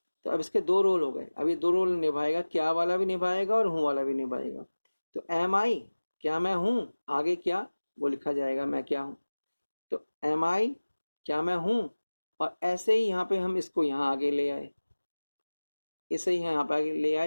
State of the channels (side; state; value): both; inverted; correlation -1.00